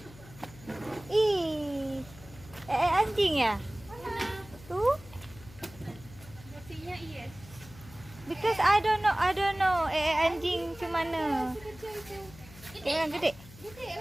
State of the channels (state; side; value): noise; left; hum, 20 dB below the sound